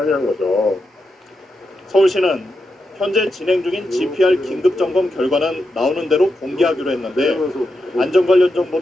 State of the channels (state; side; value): normal; both; correlation 0.87